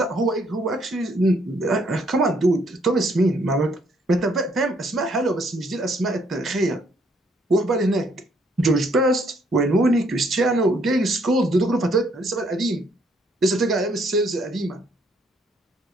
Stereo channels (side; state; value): both; normal; correlation 0.68